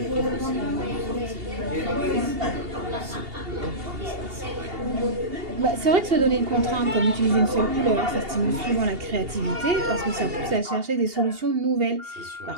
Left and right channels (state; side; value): late; left; 2.8 ms